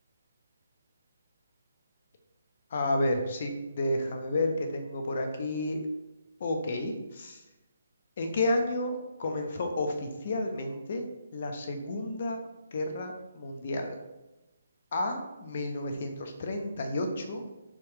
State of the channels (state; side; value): inverted; both; correlation -0.77